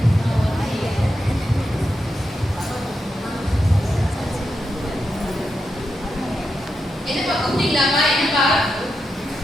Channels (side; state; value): both; normal; correlation 0.86